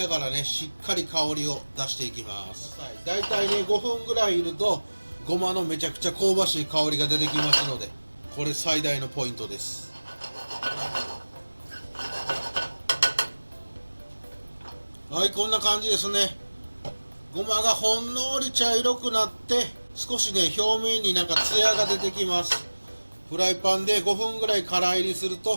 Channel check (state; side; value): inverted; both; correlation -1.00